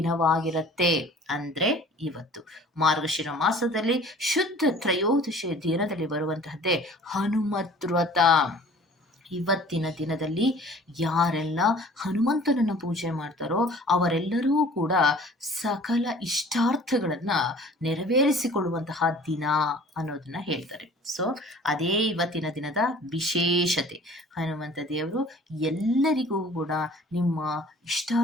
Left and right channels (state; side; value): normal; both; correlation 0.49